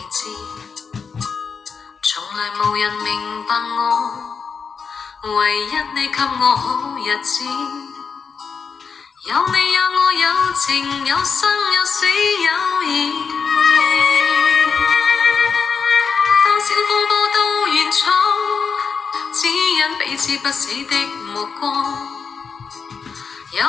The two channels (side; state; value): right; quieter; 5.8 dB